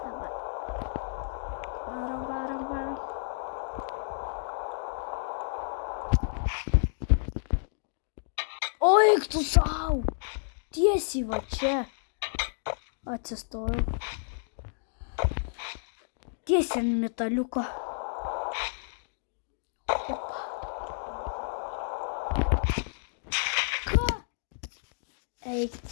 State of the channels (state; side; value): silent; right; digital silence